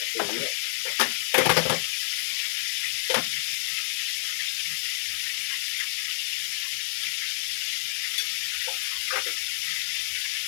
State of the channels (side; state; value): right; silent; digital silence